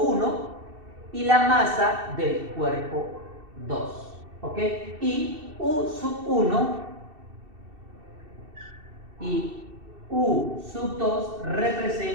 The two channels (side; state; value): left; late; 2.7 ms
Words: y la masa del cuerpo 2, ¿ok? Y U1 y U2